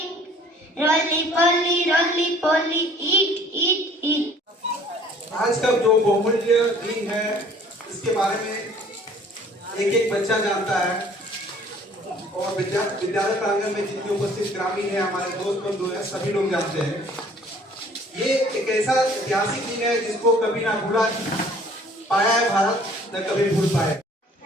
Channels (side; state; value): both; normal; correlation 0.54